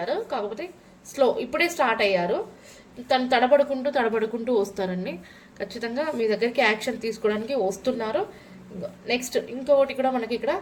కాకపోతే ఇప్పుడే స్టార్ట్ అయ్యారు. తను తడబడుకుంటూ వస్తారండి. ఖచ్చితంగా మీ దగ్గరికి యాక్షన్ తీసుకోవడానికి వస్తున్నారు. నెక్స్ట్ ఇంకొకటి కూడా మనకి ఇక్కడ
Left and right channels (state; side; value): identical; both; correlation 1.00